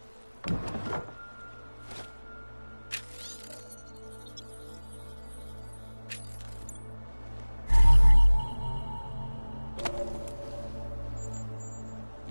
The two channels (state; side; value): inverted; both; correlation -1.00